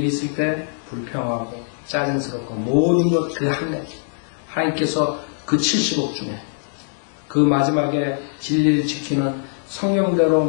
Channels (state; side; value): silent; right; digital silence